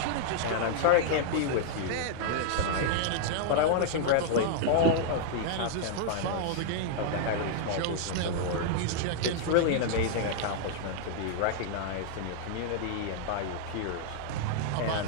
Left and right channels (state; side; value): different; both; correlation -0.01